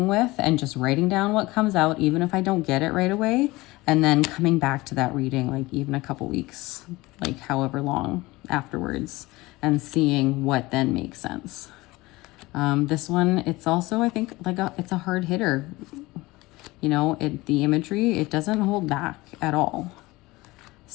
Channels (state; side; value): quieter; right; 20.7 dB